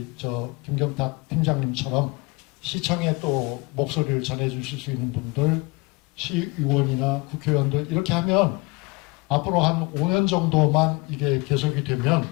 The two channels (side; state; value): right; quieter; 26.2 dB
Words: 김경탁 팀장님처럼 시청에 또 목소리를 전해주실 수 있는 분들, 시의원이나 국회의원들 이렇게 하면 앞으로 한 5년 정도만 이게 계속이 되면